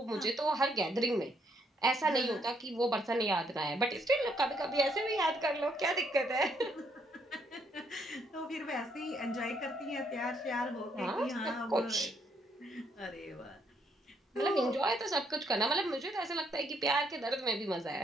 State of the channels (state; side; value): normal; both; correlation 0.72